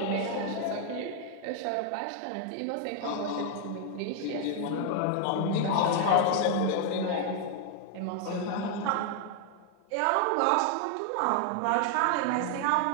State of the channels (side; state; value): both; different; correlation 0.00